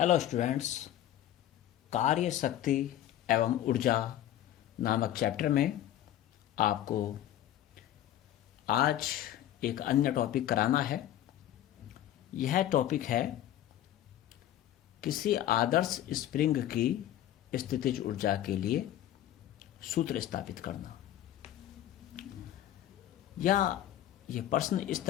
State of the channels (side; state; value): right; quieter; 12.3 dB